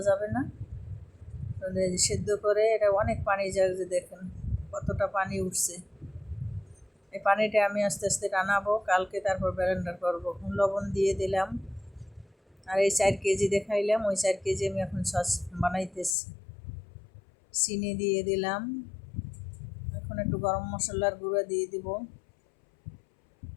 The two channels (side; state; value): right; drops out; at 16.2 s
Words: যাবে না। সেদ্ধ করে এটা অনেক পানি যায়, যে দেখেন কতটা পানি উঠছে। এই পানিটা আমি আস্তে আস্তে টানাবো কালকে, তারপর ব্লেন্ডার করবো। লবণ দিয়ে দিলাম। আর এই 4 কেজি দেখাইলাম, ওই 4 কেজি আমি এখন সস বানাইতেছি। চিনি দিয়ে দিলাম, এখন একটু গরম মশলার গুঁড়া দিয়ে দিব,